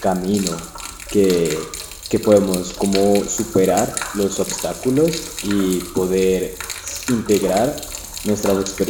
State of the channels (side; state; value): both; identical; correlation 1.00